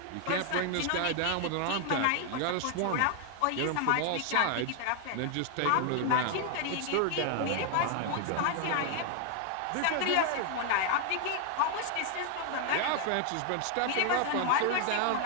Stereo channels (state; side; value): different; both; correlation 0.00